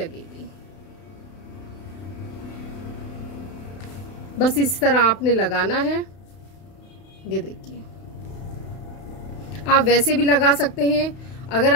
बस इस तरह आपने लगाना है। ये देखिए, आप वैसे भी लगा सकते हैं, अगर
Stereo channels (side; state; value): right; late; 32 ms